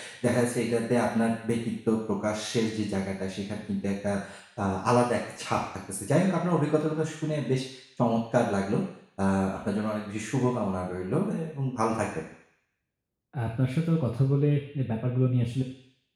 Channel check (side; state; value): both; identical; correlation 1.00